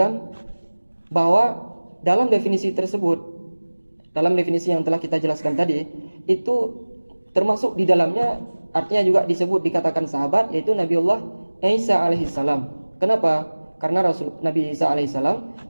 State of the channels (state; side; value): inverted; both; correlation -1.00